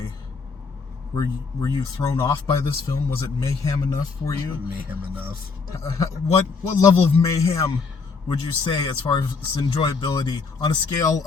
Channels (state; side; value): quieter; right; 4.8 dB